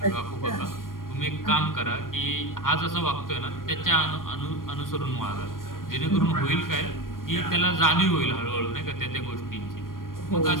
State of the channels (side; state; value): right; late; 0.91 ms